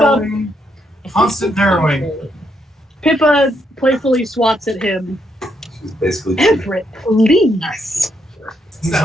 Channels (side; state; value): both; normal; correlation 0.77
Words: constant narrowing. Pippa playfully swats at him. She's basically Everett, please. He's